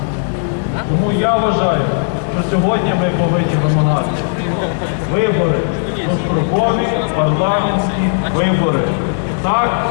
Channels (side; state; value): right; silent; 69 dB below the other